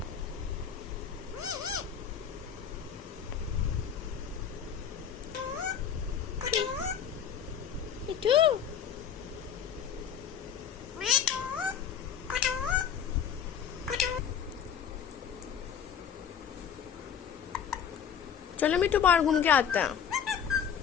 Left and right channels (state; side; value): quieter; right; 7.9 dB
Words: मिठू, चलो मिठू बाहर घूम के आते हैं।